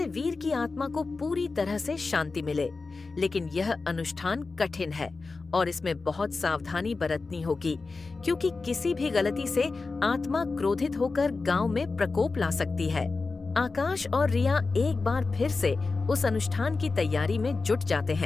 वीर की आत्मा को पूरी तरह से शांति मिले। लेकिन यह अनुष्ठान कठिन है और इसमें बहुत सावधानी बरतनी होगी, क्योंकि किसी भी गलती से आत्मा क्रोधित होकर गांव में प्रकोप ला सकती है। आकाश और रिया एक बार फिर से उस अनुष्ठान की तैयारी में जुट जाते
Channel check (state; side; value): quieter; right; 4.0 dB